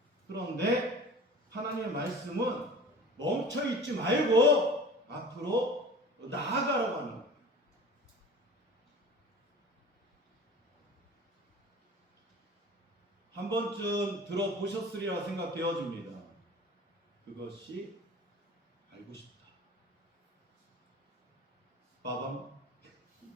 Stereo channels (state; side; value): normal; both; correlation 0.40